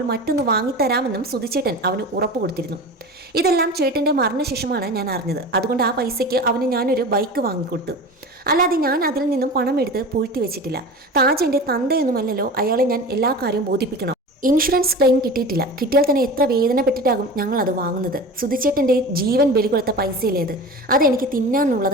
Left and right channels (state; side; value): normal; both; correlation 0.32